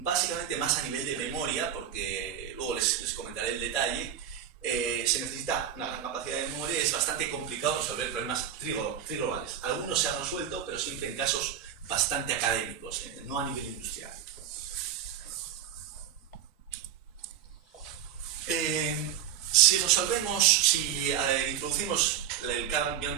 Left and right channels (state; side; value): quieter; left; 9.6 dB